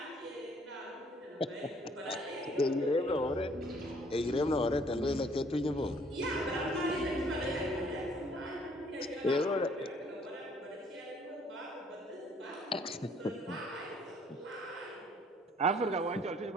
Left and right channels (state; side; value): normal; both; correlation 0.61